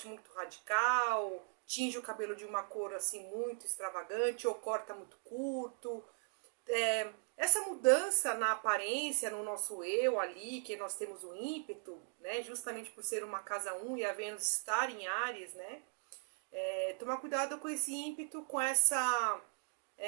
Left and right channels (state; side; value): silent; left; 52 dB below the other